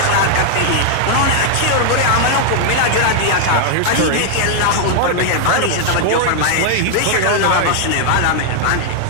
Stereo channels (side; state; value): both; different; correlation 0.00